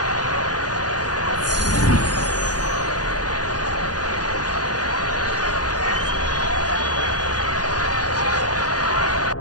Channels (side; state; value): right; late; 0.69 ms